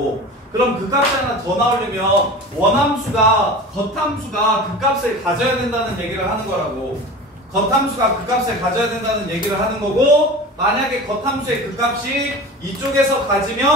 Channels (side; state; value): both; normal; correlation 0.34